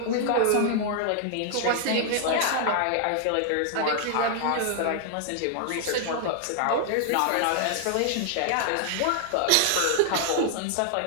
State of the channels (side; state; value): both; different; correlation 0.00